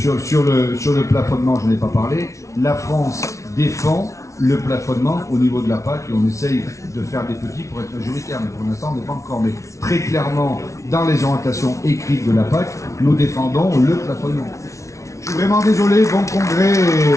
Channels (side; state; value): right; late; 0.14 ms